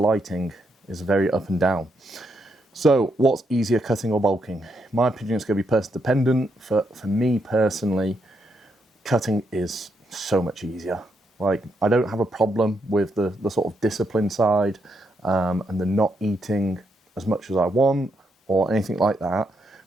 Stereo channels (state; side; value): normal; both; correlation 0.79